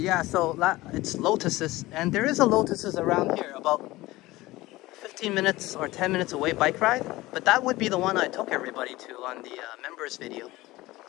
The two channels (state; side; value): quieter; right; 18.8 dB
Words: yeah, so it's Lotuses, and there is a Lotuses around here, about 15 minutes or 10 minutes away bike ride. But that would be the one I took everybody to on the members video.